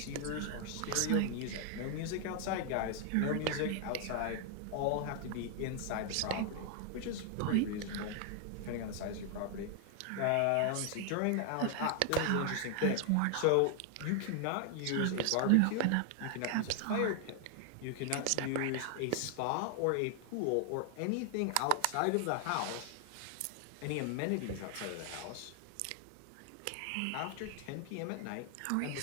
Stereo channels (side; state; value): both; different; correlation 0.00